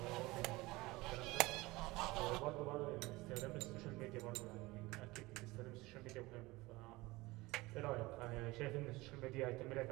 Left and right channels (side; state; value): left; quieter; 21.1 dB